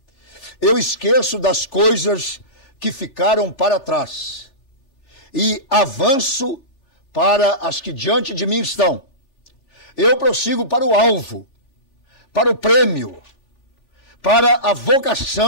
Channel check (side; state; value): right; late; 3.4 ms